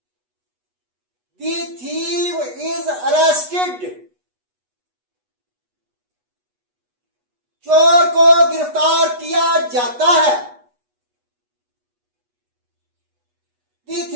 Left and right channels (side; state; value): left; late; 8.2 ms